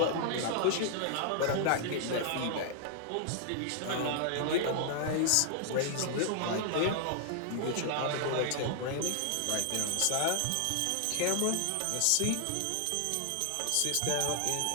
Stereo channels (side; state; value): both; different; correlation 0.00